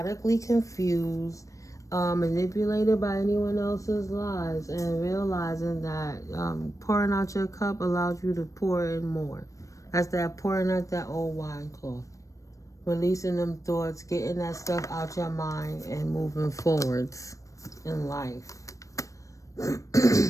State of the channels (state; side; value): late; right; 0.16 ms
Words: confused, manipulated by anyone else's lies, and realizing that pouring out your cup allows you to pour in more. That's that pouring out that old wine cloth. Releasing them thoughts, getting that stuff out your mind, and moving forwards in life.